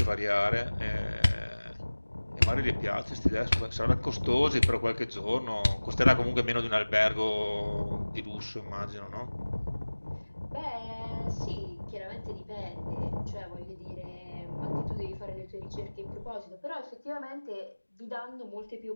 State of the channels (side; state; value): both; inverted; correlation -1.00